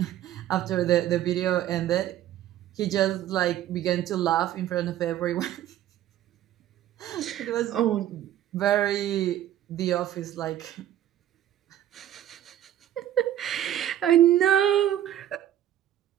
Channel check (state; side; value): quieter; left; 12.1 dB